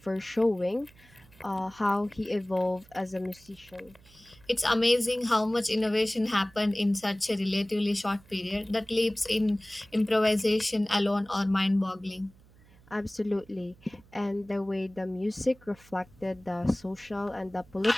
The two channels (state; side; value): noise; right; hum, 26 dB below the sound